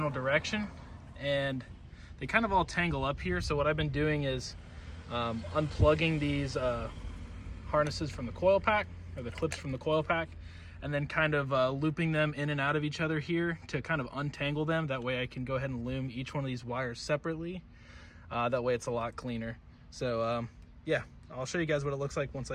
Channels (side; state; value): both; identical; correlation 1.00